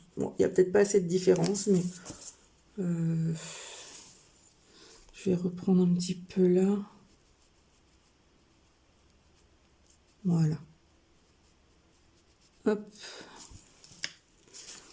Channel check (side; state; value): both; identical; correlation 1.00